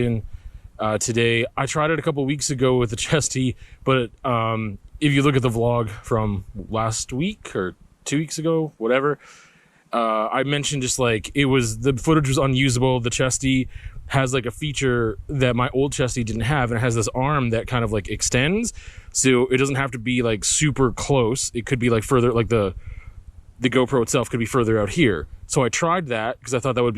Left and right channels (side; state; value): both; identical; correlation 1.00